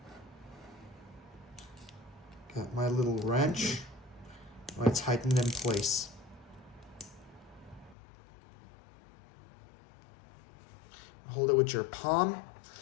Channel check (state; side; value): drops out; right; at 8.0 s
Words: Got my little wrench. I'm going to tighten it in place. Hold it with your palm.